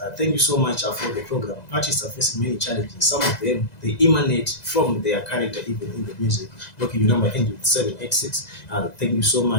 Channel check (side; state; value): right; late; 2.0 ms